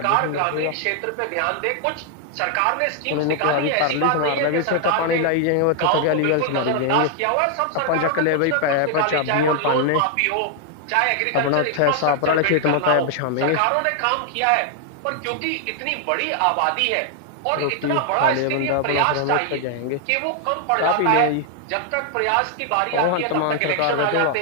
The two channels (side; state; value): both; different; correlation 0.00